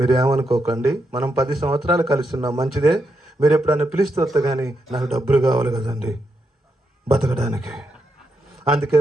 ఏమనుకోకండి, మనం 10 సంవత్సరాలు కలిసి ఉన్నాం, మంచిదే, మీరు ఎప్పుడన్నా పిలిస్తే వస్తా, కానీ నాకు డబ్బులు కావాలి కదండి బతకడానికి, అందుకే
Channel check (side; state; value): both; normal; correlation 0.82